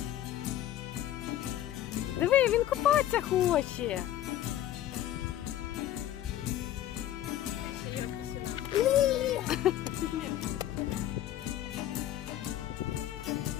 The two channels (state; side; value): quieter; right; 12.4 dB